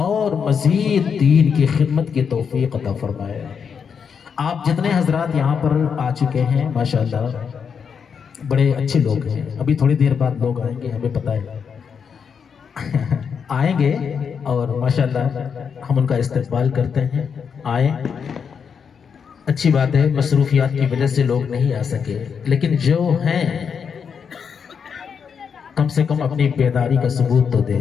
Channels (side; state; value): right; quieter; 6.6 dB